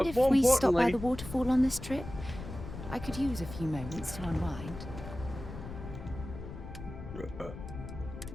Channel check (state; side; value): noise; left; rumble, 11 dB below the sound